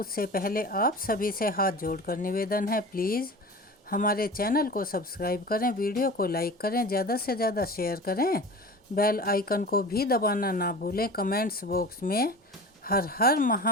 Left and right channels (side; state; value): both; normal; correlation 0.36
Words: पहले आप सभी से हाथ जोड़कर निवेदन है, प्लीज़ हमारे चैनल को सब्सक्राइब करें, वीडियो को लाइक करें, ज़्यादा से ज़्यादा शेयर करें, बेल आइकन को भी दबाना ना भूलें। कमेंट्स बॉक्स में हर हर